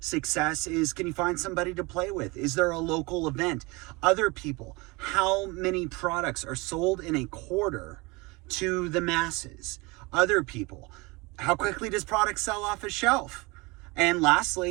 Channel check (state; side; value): quieter; left; 25.4 dB